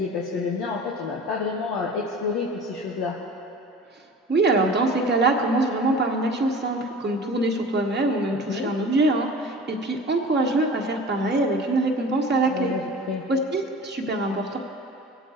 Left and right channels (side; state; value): both; normal; correlation 0.40